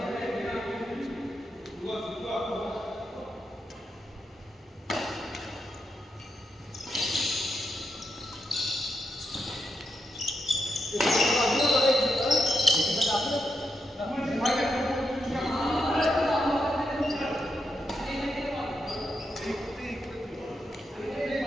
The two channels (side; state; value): both; normal; correlation 0.84